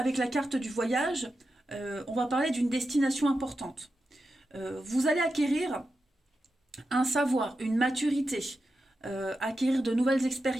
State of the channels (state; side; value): normal; both; correlation 0.89